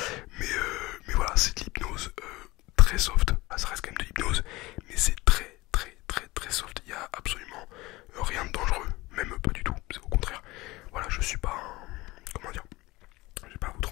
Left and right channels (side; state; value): right; quieter; 20.7 dB